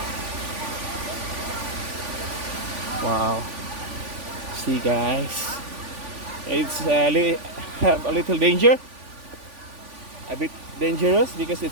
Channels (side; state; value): left; late; 3.5 ms